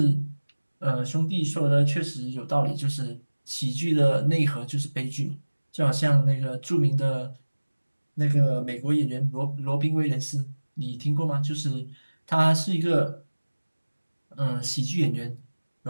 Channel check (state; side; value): inverted; both; correlation -1.00